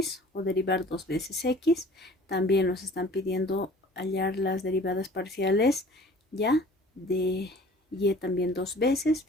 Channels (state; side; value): normal; both; correlation 0.48